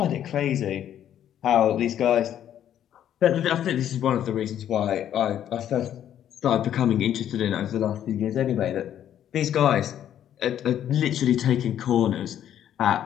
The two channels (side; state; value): right; quieter; 10.5 dB